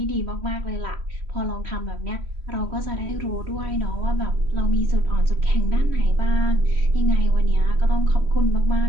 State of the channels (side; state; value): left; late; 3.1 ms